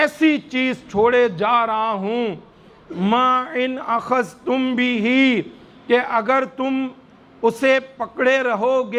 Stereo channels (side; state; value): both; identical; correlation 1.00